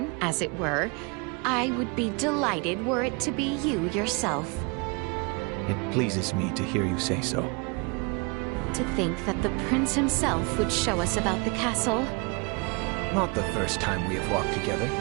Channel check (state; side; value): quieter; left; 30.7 dB